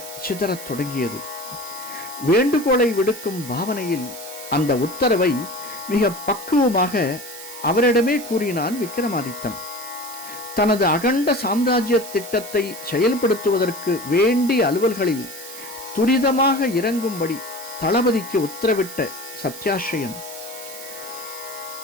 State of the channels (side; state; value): right; noise; hiss, 12 dB below the sound